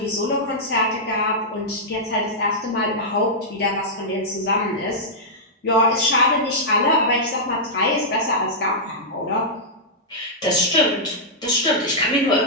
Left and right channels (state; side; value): normal; both; correlation -0.10